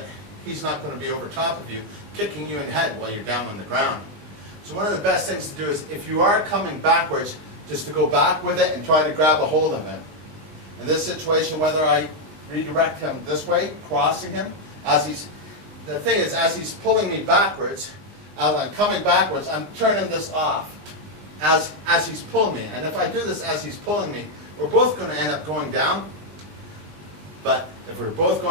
he's not going to be over top of you, kicking you in the head while you're down on the ground. So one of the best things to do is, if you are coming backwards, just to go back with it and try to grab a hold of him. In this situation, whether I redirect him this way, crossing him, the thing is, as he's pulling me backwards, as I'm coming backwards, I'm turning this off as he's pulling me. And if I do this as he's pulling me, we're both going to end up going down. But if we're both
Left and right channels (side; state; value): left; late; 20 ms